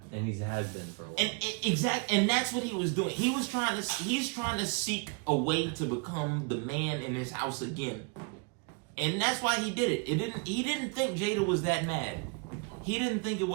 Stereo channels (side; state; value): left; quieter; 32.8 dB